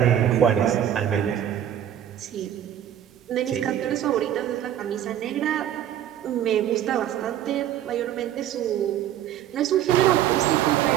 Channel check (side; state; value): left; quieter; 10.8 dB